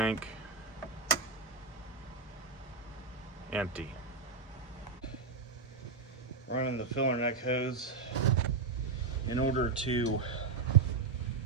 Empty. Running the filler neck hose. In order to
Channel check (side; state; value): left; quieter; 4.6 dB